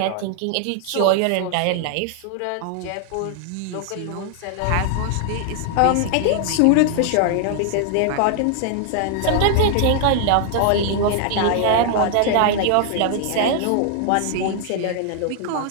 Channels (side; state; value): both; different; correlation 0.00